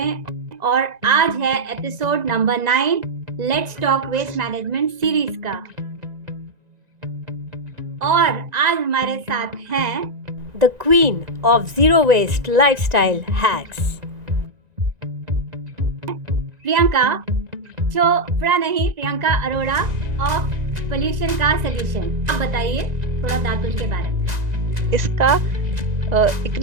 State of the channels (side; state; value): left; late; 1.9 ms